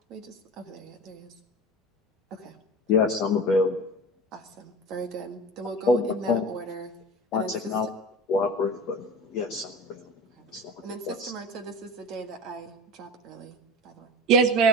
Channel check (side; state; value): both; normal; correlation 0.32